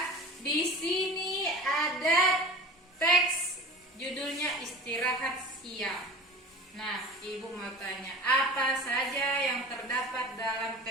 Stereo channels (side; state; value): both; normal; correlation 0.37